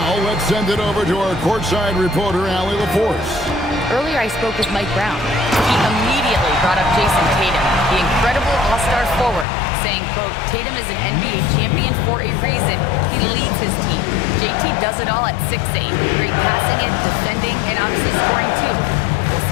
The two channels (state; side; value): drops out; right; at 9.5 s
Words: let's send it over to our courtside reporter, Allie LaForce. Earlier, I spoke with Mike Brown. He immediately brought up Jason Tatum, the incredible all-star forward, saying, quote, Tatum is an NBA champion for a reason. He leads his team. JT does it all at 6'8". Great passing it, defending, and obviously scoring too. We'll